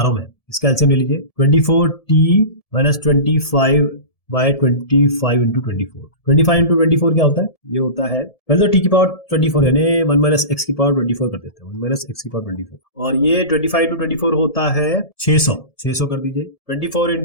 हूँ मैं, इसका एलसीएम ले लीजिए 24t-25/25 इंटू 24। 25 इंटू 24 क्या होता है, ये होता है पहले तो t⁻24 यानी 1 - x⁻24 कर देते हैं, 1 - x⁻24 और ये 25 इंटू 24 होता है 600 कर दीजिए। 24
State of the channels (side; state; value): right; late; 1.7 ms